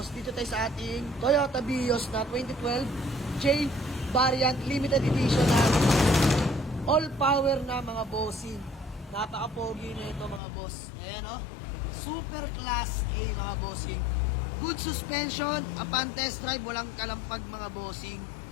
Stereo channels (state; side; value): drops out; right; at 10.4 s